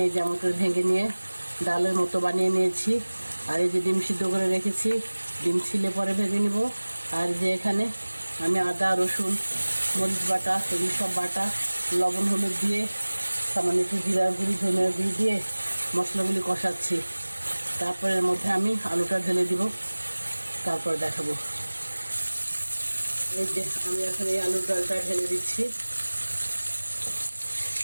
এই যে এমন করে ভেঙে নিয়ে ডালের মতো বানিয়ে নিয়েছি। আর এই যে ডিম সিদ্ধ করে রেখেছি, ডিম ছিলে পরে ভেজে নিব। আর যে এখানে আমি আদা রসুন মরিচ বাটা এগুলি সব বাটা লবণ হলুদ দিয়ে সামান্য একটু জিরা গুঁড়ি ধনিয়া গুঁড়ি দিয়ে মশলাগুলি কষাচ্ছি। তারপরে এর মধ্যে আমি আলুটা ঢেলে দিব, তারপর দেখাবো। এই যে আমি এখন এই আলুর ডালটা ঢেলে দিচ্ছি।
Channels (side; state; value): both; inverted; correlation -1.00